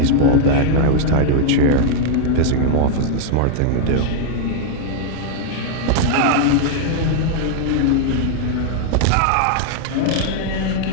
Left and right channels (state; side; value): different; both; correlation 0.00